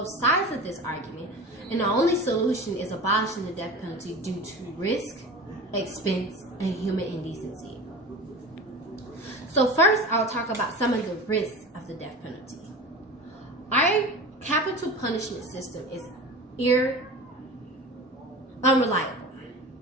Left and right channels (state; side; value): normal; both; correlation 0.33